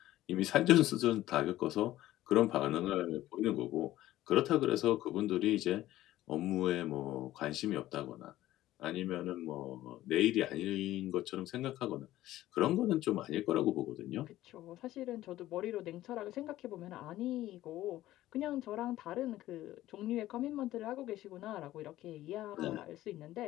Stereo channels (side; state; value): right; quieter; 14.9 dB